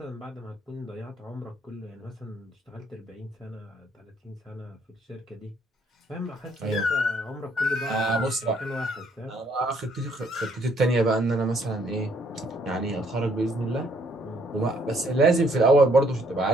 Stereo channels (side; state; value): both; normal; correlation 0.66